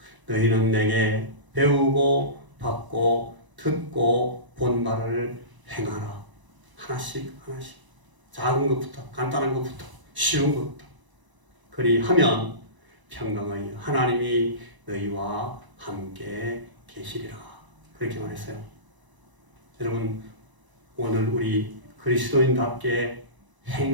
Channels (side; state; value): left; late; 1.0 ms